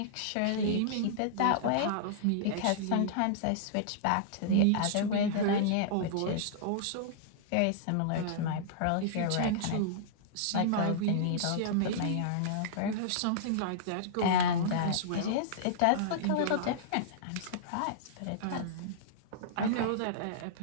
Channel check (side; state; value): both; different; correlation -0.02